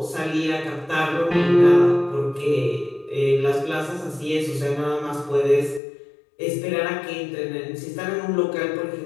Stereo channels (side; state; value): right; drops out; at 5.8 s